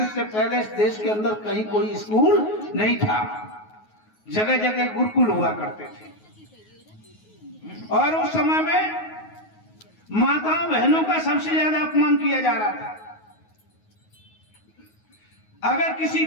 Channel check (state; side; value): late; right; 9.4 ms